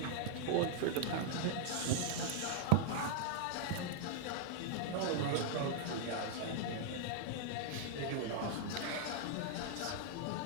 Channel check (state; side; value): different; both; correlation -0.01